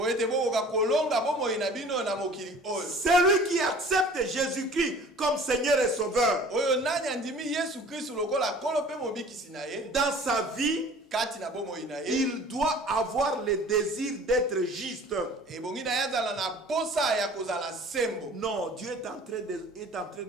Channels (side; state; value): both; normal; correlation 0.47